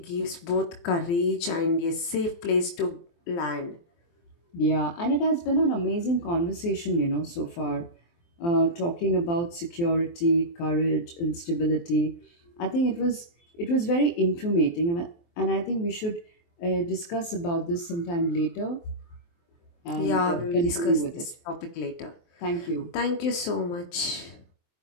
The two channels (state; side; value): late; right; 23 ms